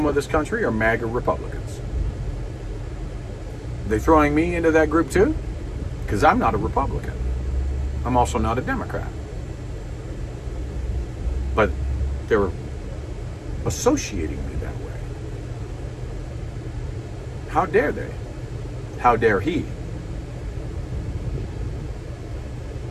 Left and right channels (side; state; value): both; identical; correlation 1.00